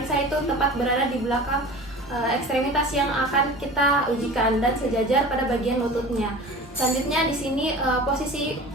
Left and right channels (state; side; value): normal; both; correlation 0.38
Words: itu tepat berada di belakang ekstremitas yang akan kita ujikan dan sejajar pada bagian lututnya. Selanjutnya di sini posisi